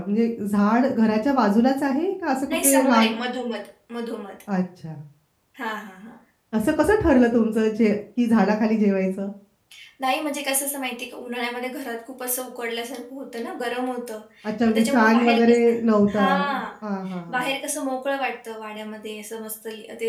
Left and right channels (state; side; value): identical; both; correlation 1.00